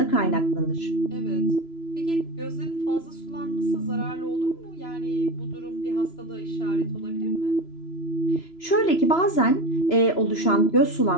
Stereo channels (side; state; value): right; late; 3.0 ms